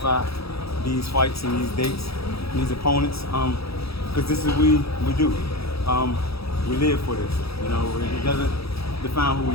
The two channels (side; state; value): right; late; 0.77 ms